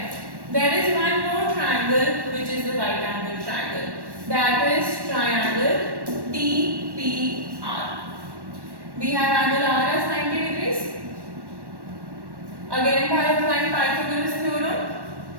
there is one more triangle which is the right angle triangle. That is triangle TPR. We have angle R as 90 degrees. Again, by applying Pythagoras theorem,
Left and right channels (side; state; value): left; late; 1.1 ms